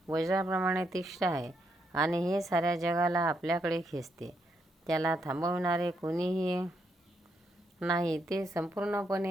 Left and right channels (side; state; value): both; normal; correlation 0.78